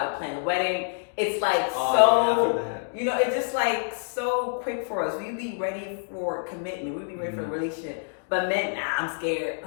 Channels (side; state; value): right; silent; digital silence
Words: to plan the wedding. It's like it's just like so quick for us. We be ready for commitment. We be ready for a relationship. But men, nah, I'm scared.